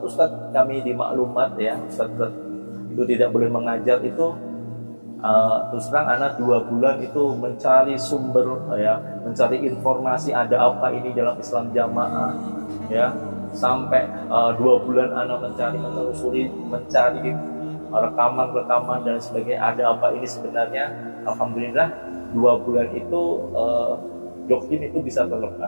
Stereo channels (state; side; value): inverted; both; correlation -1.00